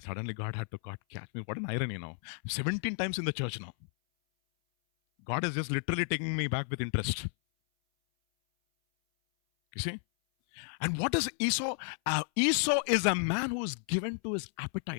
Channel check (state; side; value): silent; right; 56 dB below the other